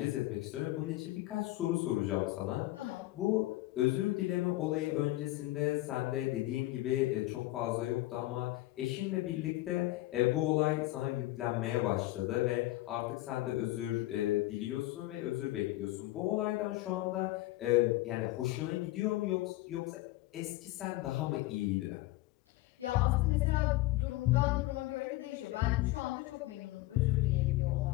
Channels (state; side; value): quieter; right; 18.0 dB